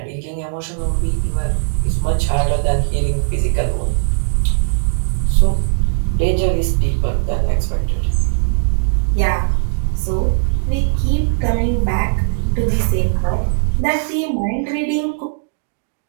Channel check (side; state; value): left; silent; digital silence